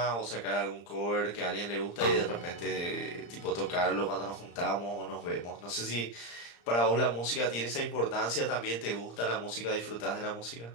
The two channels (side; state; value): right; late; 35 ms